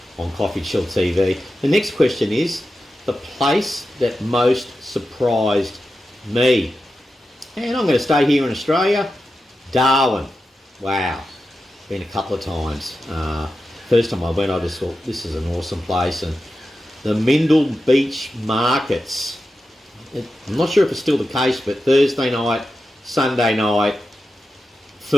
on CoffeeChillTV. The next question is the place that most surprised me. And I'm going to stay here in Australia. Darwin. Wow. Been a couple of times. First time I went, I just thought, this is an awesome place. And the Mindle Beach markets, I'm not sure if it's still the case, but Thursday night, Sunday night,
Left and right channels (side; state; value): both; normal; correlation 0.91